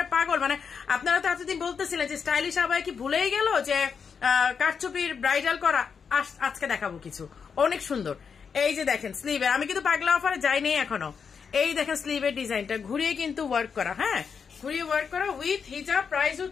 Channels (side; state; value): right; quieter; 6.3 dB